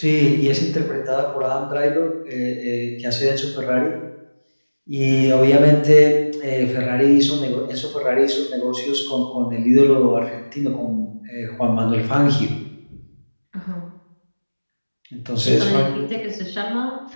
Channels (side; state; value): both; inverted; correlation -1.00